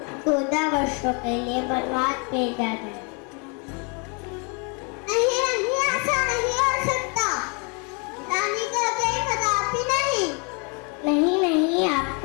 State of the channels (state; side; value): quieter; right; 34.4 dB